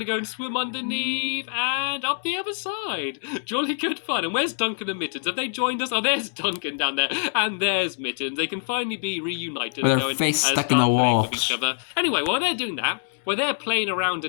go and swim underneath and up the other side. Jolly good fun. And where's Duncan and Mittens? Have they joined us? Oh, there's Duncan down there, and there's Mittens. They can finally be reunited. With their face stuck in the wall. Anyway, while they're doing that, while they're playing around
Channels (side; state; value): right; silent; 62 dB below the other